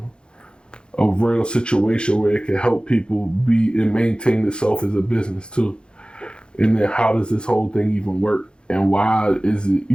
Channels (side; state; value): right; late; 0.052 ms